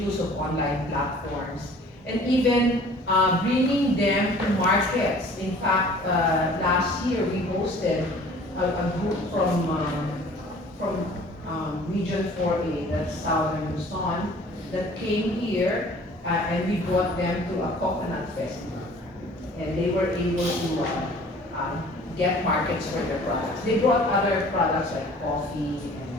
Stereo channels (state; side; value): normal; both; correlation 0.49